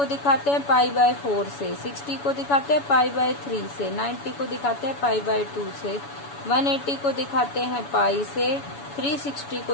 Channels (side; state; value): right; late; 7.1 ms